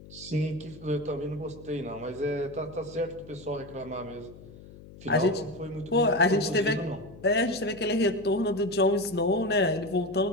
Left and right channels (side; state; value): left; noise; hum, 18 dB below the sound